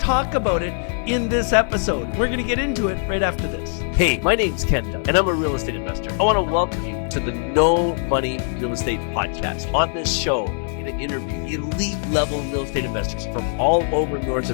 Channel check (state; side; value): silent; right; 64 dB below the other